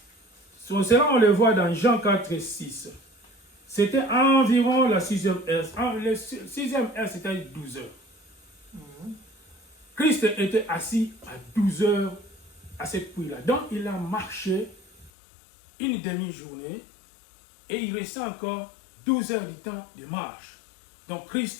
Cela, on le voit dans Jean 4, 6. C'était environ la 6e heure. La 6e heure, c'était 12 heures. Christ était assis à 12 heures à cette puits-là. Donc, il a marché une demi-journée et il restait encore 12 heures du temps de marche. Donc,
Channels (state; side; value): drops out; right; at 15.1 s